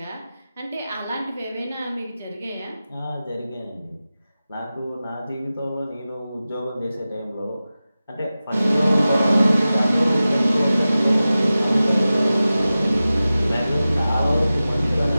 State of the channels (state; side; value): inverted; both; correlation -0.95